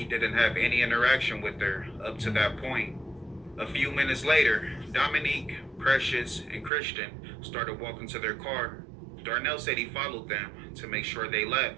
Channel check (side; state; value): left; drops out; at 6.7 s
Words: didn't have any interaction with her up to that point. A few minutes later, Dominique, Precious, and Christian started walking to their car. Darnell said he followed them to make sure they